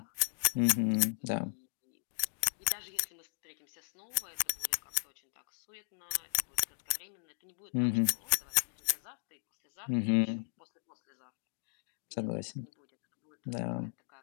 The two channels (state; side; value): silent; right; digital silence